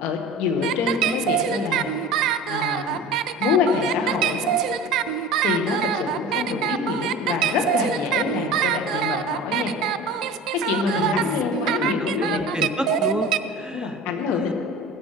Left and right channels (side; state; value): both; normal; correlation 0.36